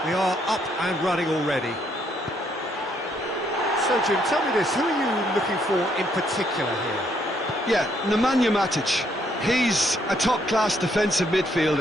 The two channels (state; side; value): normal; both; correlation 0.71